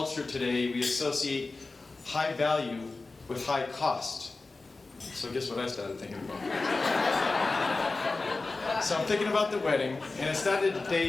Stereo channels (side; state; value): right; quieter; 3.6 dB